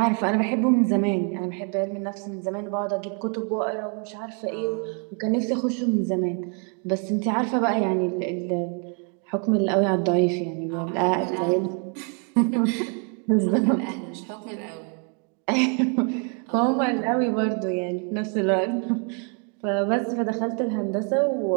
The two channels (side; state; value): left; quieter; 39.0 dB